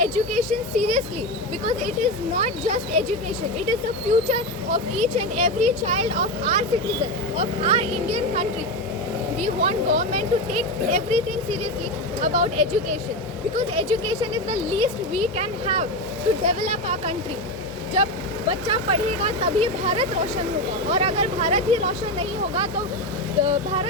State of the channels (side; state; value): both; normal; correlation 0.16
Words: education seriously because it is not just education. It is the future of each and every child of our citizen, of our Indian country. We want government to take everything seriously about education because education is the least we can have to develop our country. जब बच्चा पढ़ेगा तभी भारत रोशन होगा और अगर भारत ही रोशन नहीं होगा तो